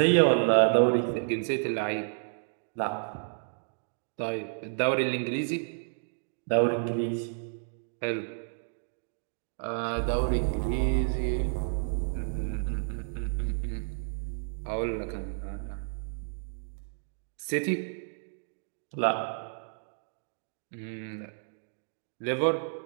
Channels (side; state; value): left; silent; digital silence